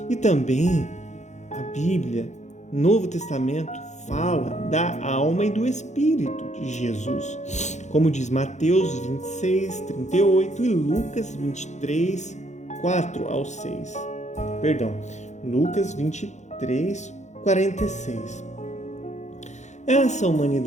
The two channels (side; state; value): right; late; 0.34 ms